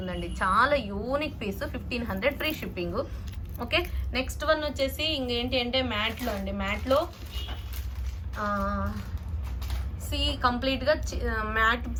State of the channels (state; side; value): identical; both; correlation 1.00